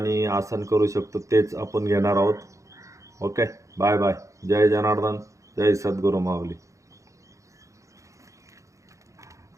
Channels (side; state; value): left; late; 0.15 ms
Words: आसन करू शकतो तेच आपण घेणार आहोत. ओके. Bye bye. जय जनार्दन. जय सद्गुरू माऊली.